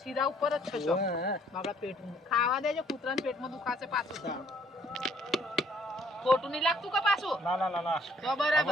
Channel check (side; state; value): both; normal; correlation 0.63